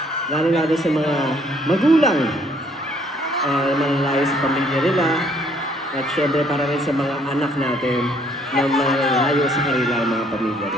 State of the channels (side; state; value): both; normal; correlation 0.64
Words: lalo-lalo sa mga magulang na manalayo sa pamilya nila. At syempre para rin sa mga anak natin na malayo sa kanilang mga pamilya